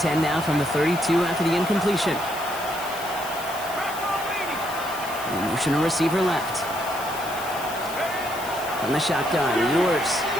now from the 32 after the incompletion. Motion a receiver left. From the shotgun, Ewers.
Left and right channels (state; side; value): noise; left; hiss, 13 dB below the sound